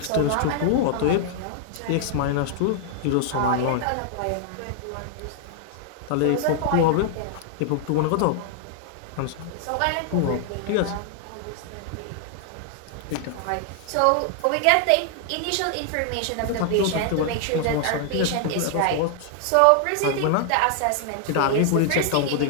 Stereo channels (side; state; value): both; different; correlation 0.00